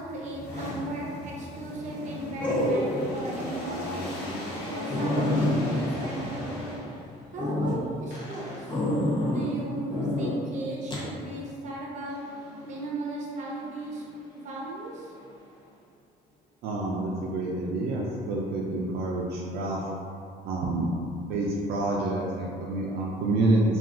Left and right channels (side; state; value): both; normal; correlation 0.54